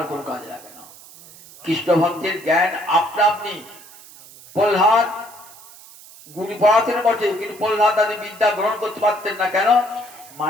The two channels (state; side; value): noise; right; hiss, 20 dB below the sound